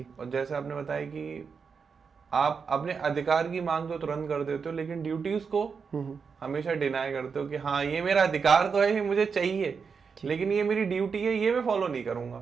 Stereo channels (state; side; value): quieter; left; 5.7 dB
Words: और जैसे आपने बताया कि आप अपने अधिकार की मांग तो तुरंत कर देते हो, लेकिन ड्यूटीज को हमेशा डिनाई करते हो कि हाँ ये मेरा अधिकार तो है, ये मुझे चाहिए, लेकिन ये मेरी ड्यूटी है, ये मैं फॉलो नहीं